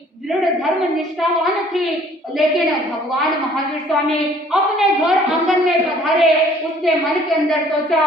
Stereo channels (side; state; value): both; normal; correlation 0.56